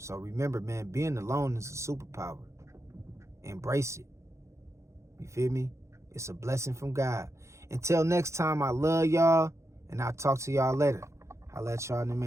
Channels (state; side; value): late; left; 0.14 ms